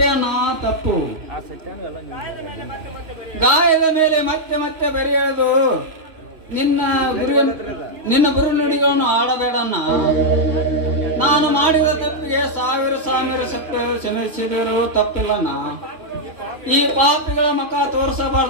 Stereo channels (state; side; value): late; left; 3.1 ms